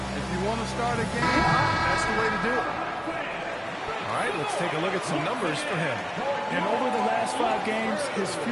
if you want to start a game, that's the way to do it. All right, let's take a look at some numbers for him. And over the last 5 games, his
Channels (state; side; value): identical; both; correlation 1.00